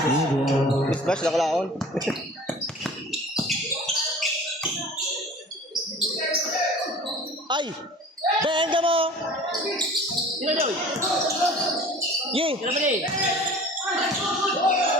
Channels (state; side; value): normal; both; correlation 0.44